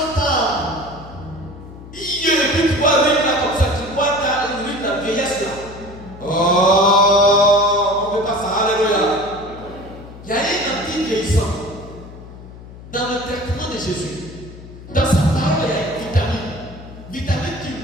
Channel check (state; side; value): noise; left; hum, 16 dB below the sound